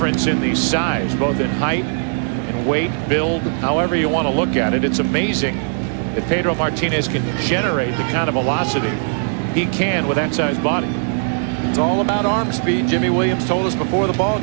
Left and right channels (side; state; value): left; silent; 64 dB below the other